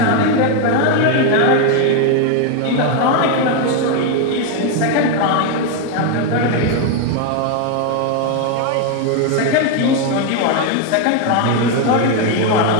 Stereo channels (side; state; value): both; different; correlation 0.01